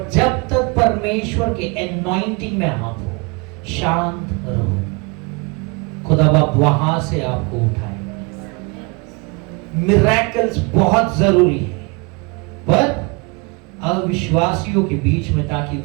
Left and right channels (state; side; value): quieter; left; 29.1 dB